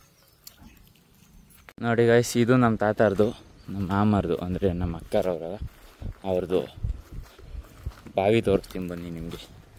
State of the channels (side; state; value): both; identical; correlation 1.00